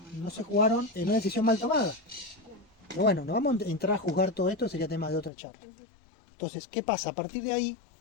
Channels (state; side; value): drops out; right; at 5.3 s